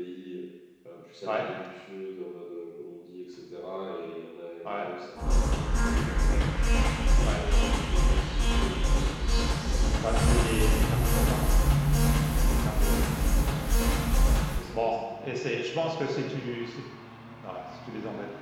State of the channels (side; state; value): both; identical; correlation 1.00